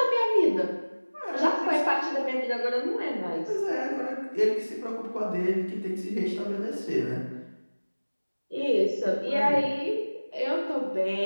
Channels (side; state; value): both; inverted; correlation -1.00